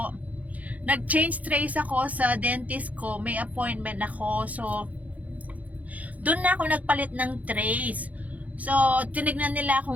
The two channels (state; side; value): late; left; 0.073 ms